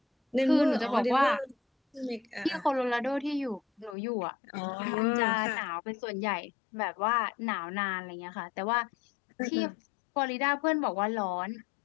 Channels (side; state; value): right; drops out; at 4.0 s